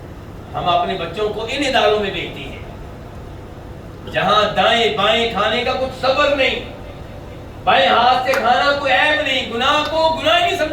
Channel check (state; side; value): identical; both; correlation 1.00